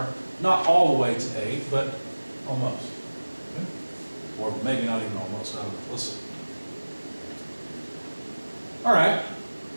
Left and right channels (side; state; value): both; inverted; correlation -1.00